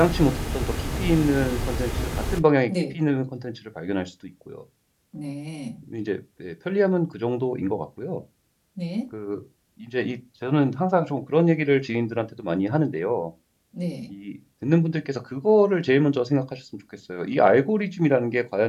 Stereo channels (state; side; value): identical; both; correlation 1.00